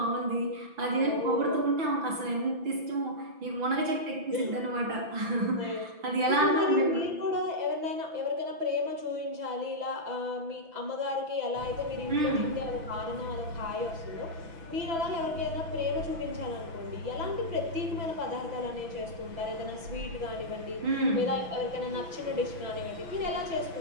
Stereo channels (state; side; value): late; left; 6.0 ms